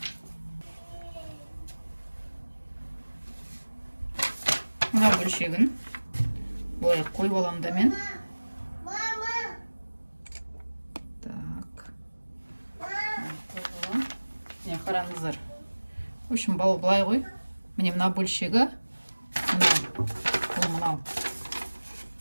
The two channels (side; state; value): both; inverted; correlation -1.00